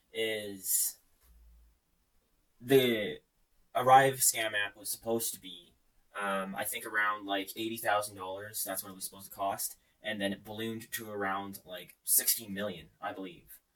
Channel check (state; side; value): identical; both; correlation 1.00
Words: is the Arrive scam app was supposed to be I think around $80,000. That's what it was supposed to cost, and then it ballooned to around 16 million, I believe,